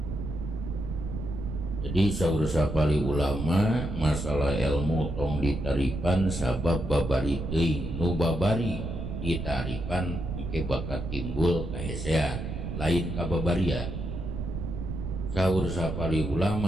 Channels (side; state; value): right; noise; rumble, 5 dB below the sound